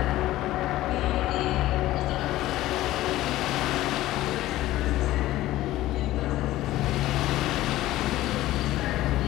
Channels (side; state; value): right; quieter; 15.7 dB